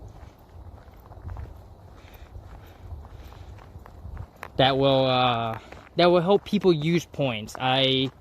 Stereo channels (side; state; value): both; identical; correlation 1.00